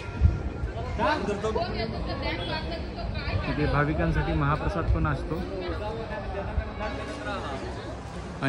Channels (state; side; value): identical; both; correlation 1.00